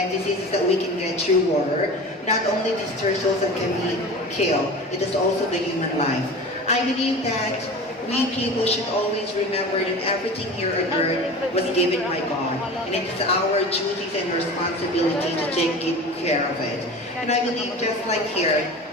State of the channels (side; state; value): both; normal; correlation 0.34